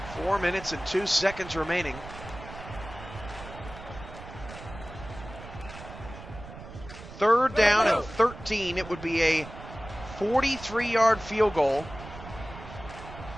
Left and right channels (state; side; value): noise; right; rumble, 14 dB below the sound